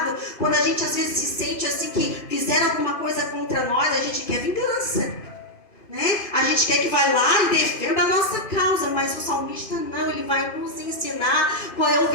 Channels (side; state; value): right; late; 2.5 ms